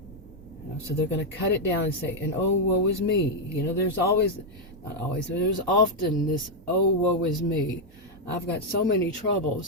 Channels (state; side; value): normal; both; correlation -0.01